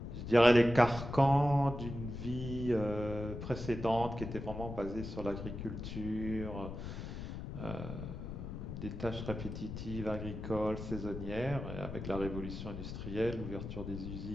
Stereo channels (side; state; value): left; noise; rumble, 7 dB below the sound